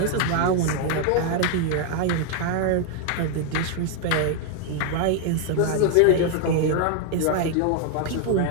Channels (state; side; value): different; both; correlation 0.00